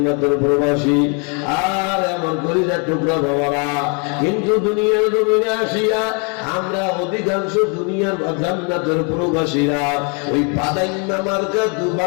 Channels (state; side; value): quieter; right; 35.8 dB